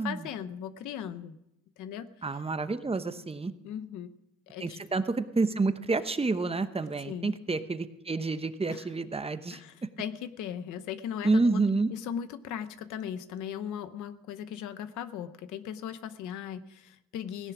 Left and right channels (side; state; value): both; normal; correlation 0.72